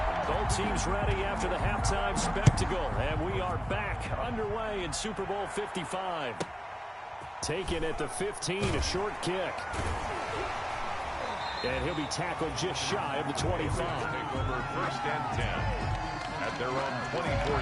Both teams ready after the halftime spectacle, and we are back underway in Super Bowl 55. Taken at the 15, a short kick. And he'll be tackled just shy of the 25. Take over 1st and 10 at their own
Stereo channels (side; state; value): both; identical; correlation 1.00